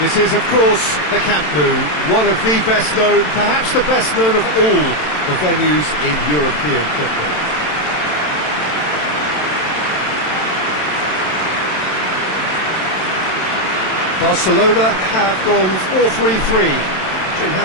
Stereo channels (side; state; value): right; late; 27 ms